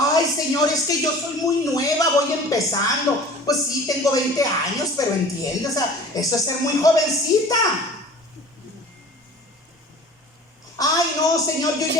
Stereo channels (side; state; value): both; normal; correlation 0.44